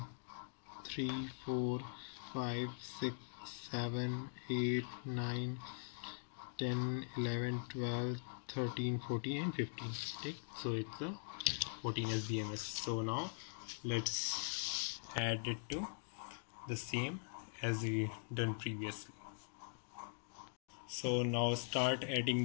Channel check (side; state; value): right; silent; digital silence